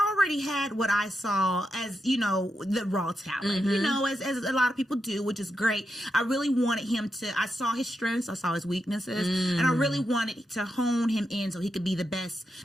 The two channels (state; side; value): normal; both; correlation 0.86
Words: had what I saw as, the raw talent, as a lot of people do, which is great. I really wanted him to, I saw his strengths, I saw his weaknesses, and I really wanted to hone him in so he could be the best,